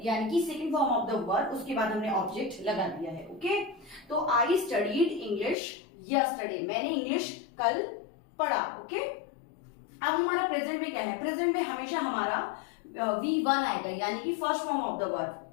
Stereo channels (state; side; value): drops out; right; at 5.6 s